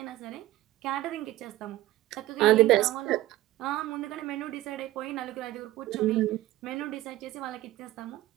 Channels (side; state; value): left; quieter; 15.8 dB